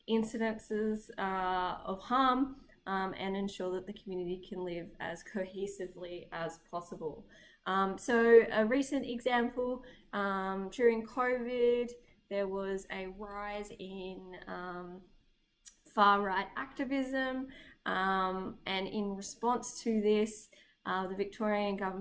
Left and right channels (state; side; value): identical; both; correlation 1.00